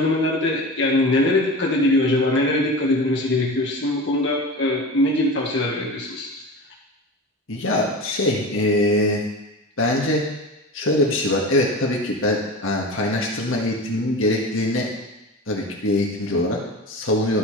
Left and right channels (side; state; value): both; normal; correlation 0.31